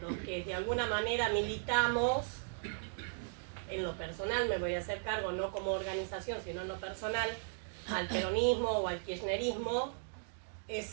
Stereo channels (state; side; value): silent; left; digital silence